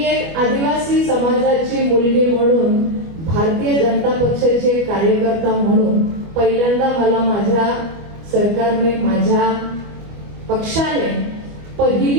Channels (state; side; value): late; left; 25 ms